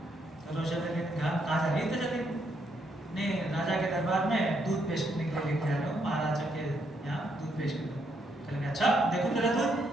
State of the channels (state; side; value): normal; both; correlation 0.75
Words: تو روشن علی نے کہا کہاں جا رہی ہے؟ تو چلی نہیں, راجا کے دربار میں دودھ پیش کرنے کے لیے لے کے جا رہا ہوں, مہاراجا کے یہاں دودھ پیش کرنے. کہنے کہ اچھا دیکھو تیرا دودھ.